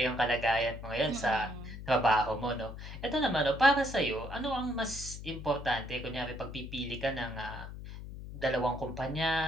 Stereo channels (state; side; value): noise; left; hum, 11 dB below the sound